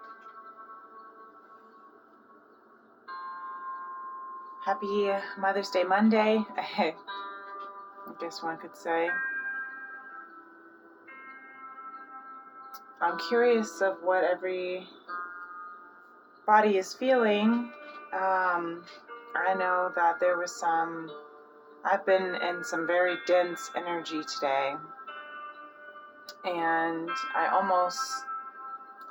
Happy Mother's Day Monday, I guess one could say. I'm curious of what everybody is feeling. I know that I've been in some very dense energy today, and I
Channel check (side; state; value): both; identical; correlation 1.00